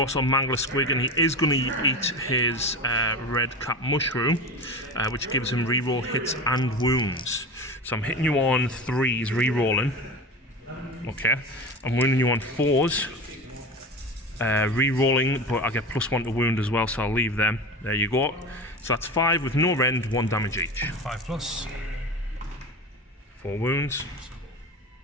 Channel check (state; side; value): normal; both; correlation 0.29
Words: on Mangler Squig, and he is going to eat his red cap mushroom, which gives him reroll hits and wounds. So I'm hitting you on 3s, rerolling. Okay. I'm wounding you on 4s, rerolling, but I get +1 to wound as well, so I'll leave them. There you go. So that's 5 with no rend, 1 damage each. 5 plus. 4 wounds.